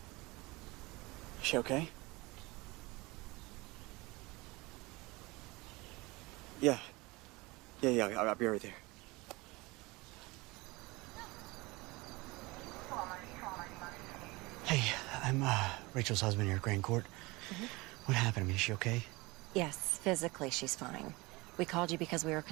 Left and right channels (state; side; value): quieter; left; 23.3 dB